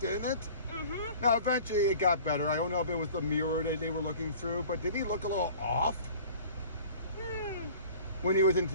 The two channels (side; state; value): both; inverted; correlation -0.46